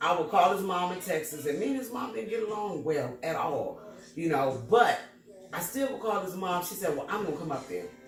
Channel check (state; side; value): identical; both; correlation 1.00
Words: I would call his mom in Texas, and me and his mom didn't get along well at all. You know, but I still would call his mom. She said, well, I'm gonna come up there.